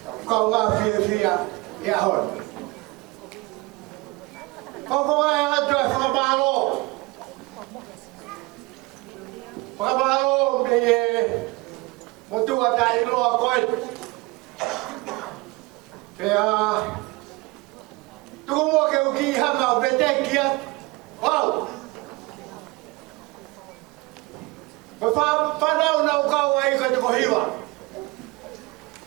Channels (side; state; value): left; quieter; 23.9 dB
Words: câu ngà phía, ya hỏi, có ai là chuyện phá ba lô bây một tu ở đây lo coi. Kaya tumo ke uki hanga bete kia wow fa na una ka wai ka ko hiwa